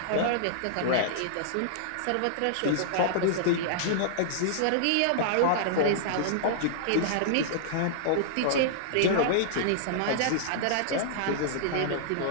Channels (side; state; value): both; different; correlation -0.02